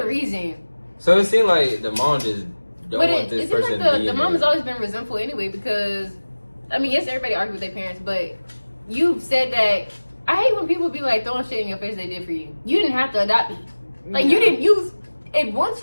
reason. So it seemed like the mom just don't want this person to be the mom has always been resentful anyway because, I mean, yes, everybody argues with their parents, but you've said that. I hate when people be like throwing shit in your face they did for you. You didn't have to adopt me. Like, you didn't use. And once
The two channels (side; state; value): both; inverted; correlation -1.00